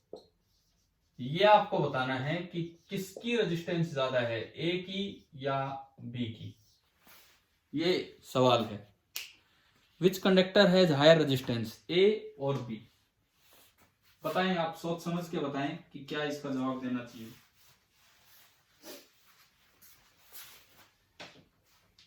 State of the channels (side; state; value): both; identical; correlation 1.00